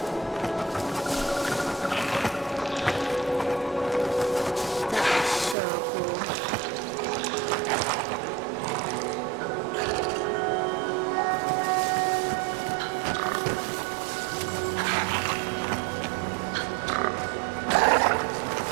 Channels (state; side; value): drops out; left; at 5.6 s